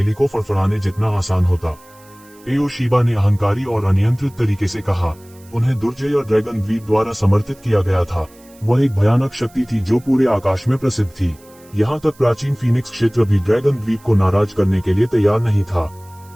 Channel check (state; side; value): noise; right; hiss, 27 dB below the sound